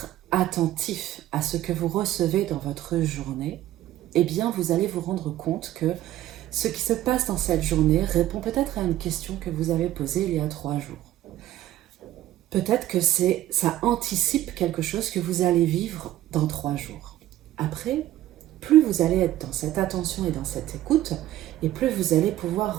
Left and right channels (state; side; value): quieter; left; 14.0 dB